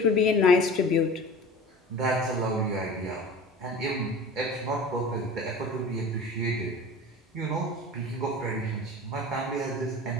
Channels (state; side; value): normal; both; correlation 0.38